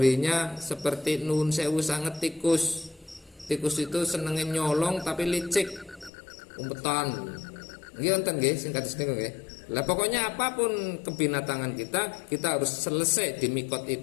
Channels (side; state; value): right; drops out; at 6.1 s